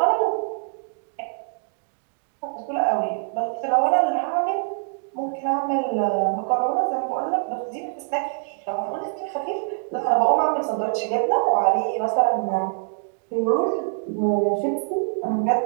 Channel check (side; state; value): left; silent; digital silence